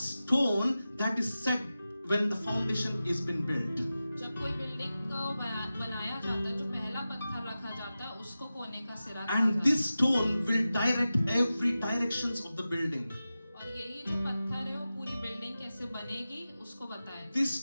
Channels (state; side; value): inverted; both; correlation -0.94